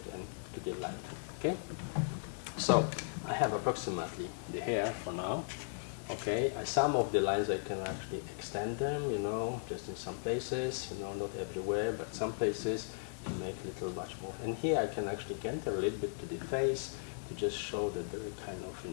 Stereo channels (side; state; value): right; silent; 53 dB below the other